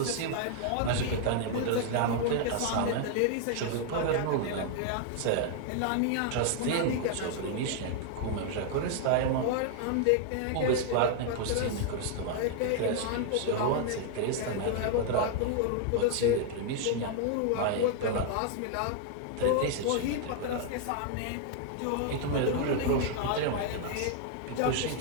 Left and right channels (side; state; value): both; different; correlation 0.00